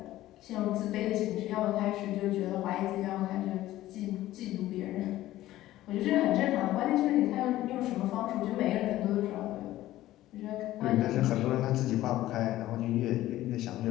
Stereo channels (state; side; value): quieter; right; 15.1 dB